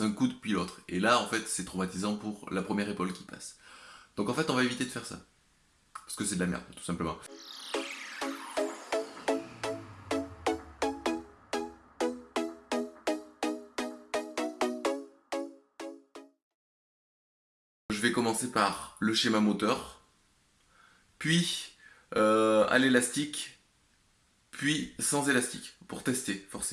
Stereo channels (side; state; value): both; identical; correlation 1.00